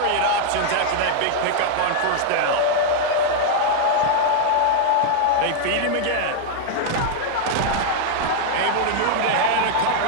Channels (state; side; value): different; both; correlation 0.00